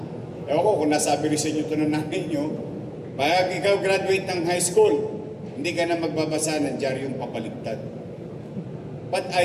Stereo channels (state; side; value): identical; both; correlation 1.00